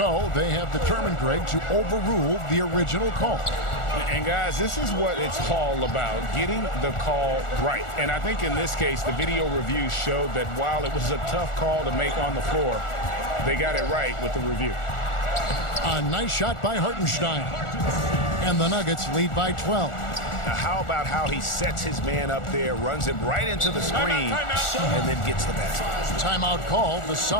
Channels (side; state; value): right; late; 1.4 ms